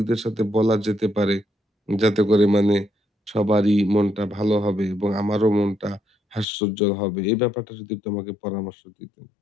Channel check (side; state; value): right; drops out; at 6.5 s